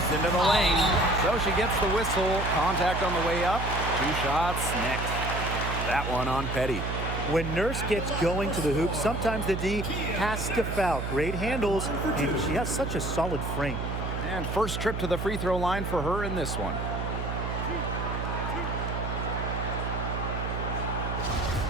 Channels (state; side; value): noise; right; hum, 3 dB below the sound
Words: into the lane. So she gets the whistle. Contact on the way up. 2 shots next. That one on Petty. When Nurse gets going to the hoop, sometimes the D has to foul. Great handles, and she has such a solid frame. And first trip to the free throw line for her in this one.